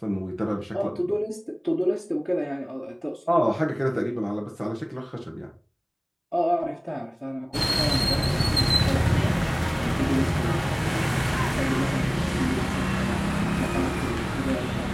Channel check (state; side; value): identical; both; correlation 1.00